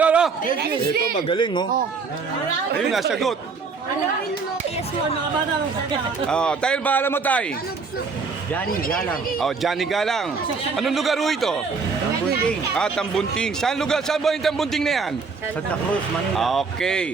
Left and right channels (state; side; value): quieter; left; 4.8 dB